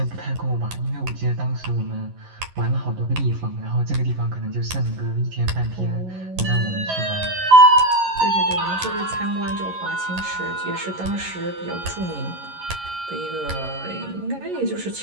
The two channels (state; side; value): late; left; 11 ms